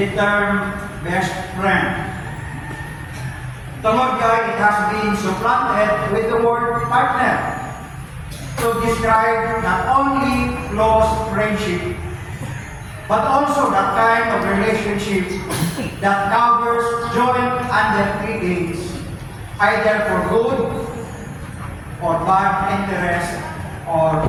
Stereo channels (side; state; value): both; identical; correlation 1.00